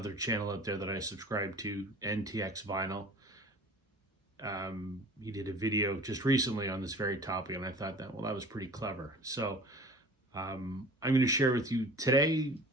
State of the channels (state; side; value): normal; both; correlation 0.43